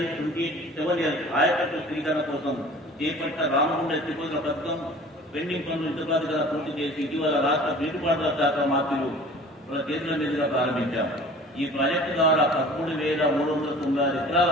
27L ఆయకట్టు స్వీకరణ కోసం చేపట్టిన రామగుండ ఎత్తిపోతున్న పథకం పెండింగ్ పనులు ఇంతకాదిగా పూర్తి చేసి ఇటీవల రాష్ట్ర నీటిపారుదల శాఖ మంత్రులు వాళ్ళ చేతుల మీదుగా ప్రారంభించాం. ఈ ప్రాజెక్టు ద్వారా 13,396 ఎకరాల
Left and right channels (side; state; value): both; normal; correlation 0.45